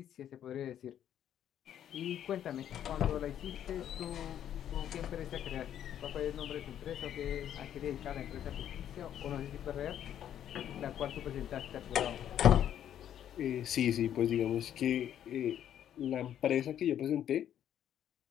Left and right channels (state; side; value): quieter; right; 10.4 dB